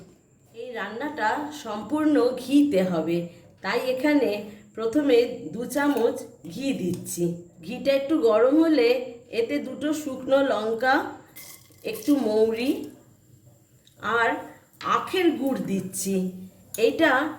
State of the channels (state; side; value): identical; both; correlation 1.00